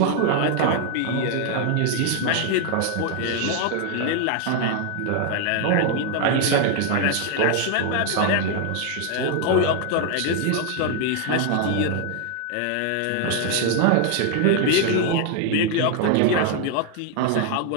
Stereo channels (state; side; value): different; both; correlation 0.00